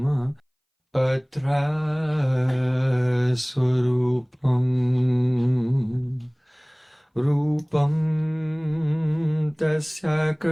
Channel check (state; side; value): identical; both; correlation 1.00